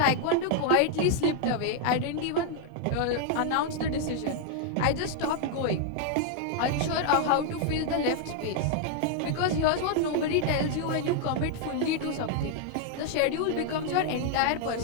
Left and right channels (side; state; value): both; different; correlation 0.00